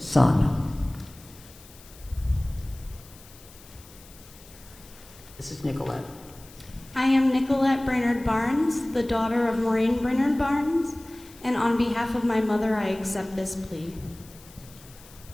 This is Nicolette. I am Nicolette Brainerd Barnes, the daughter of Maureen Brainerd Barnes, and on behalf of my mother, I accept this plea.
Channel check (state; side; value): noise; left; hiss, 22 dB below the sound